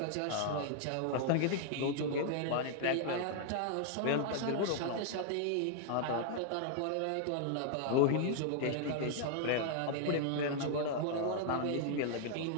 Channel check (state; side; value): different; both; correlation 0.00